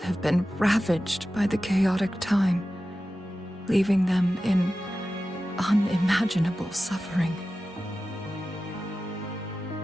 been ravaged by the chaotic time, leaving them in unimaginable suffering.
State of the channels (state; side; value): normal; both; correlation 0.94